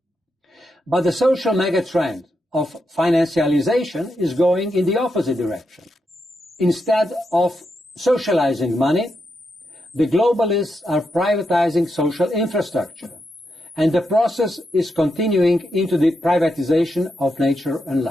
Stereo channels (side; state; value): both; normal; correlation 0.84